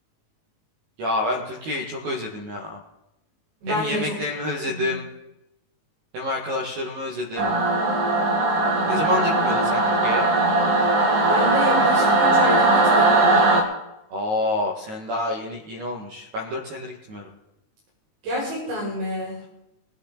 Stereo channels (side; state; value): left; late; 19 ms